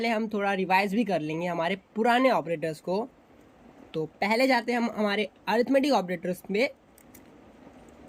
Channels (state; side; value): identical; both; correlation 1.00